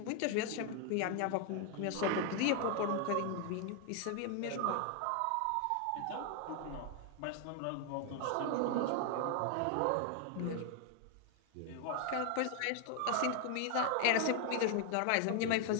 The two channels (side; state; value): both; different; correlation 0.00